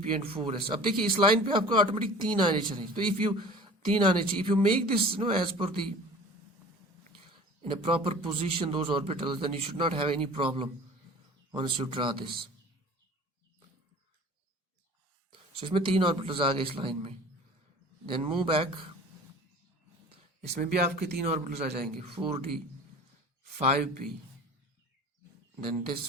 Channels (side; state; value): both; normal; correlation 0.43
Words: and 4s. अब देखिए इस line पे आपको ऑटोमेटिक 3 आने चाहिए. तो if you 3 आने चाहिए, if you make this as per the in a proper position those orbitals, then you should not have any problem once you draw this. So इसमें 3 orbitals आ गए इस लाइन में. Then move back. इसमें भी आपके 3 orbitals आ जाएंगे, 4d, 5p, then